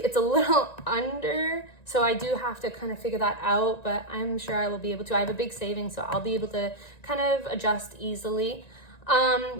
a little under, so I do have to kind of figure that out, but I'm sure I will be able to. I have a big savings, so I'll be able to kind of adjust easily.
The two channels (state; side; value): late; right; 1.9 ms